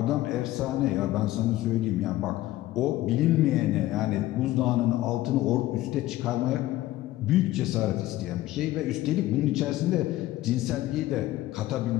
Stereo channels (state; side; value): quieter; right; 15.9 dB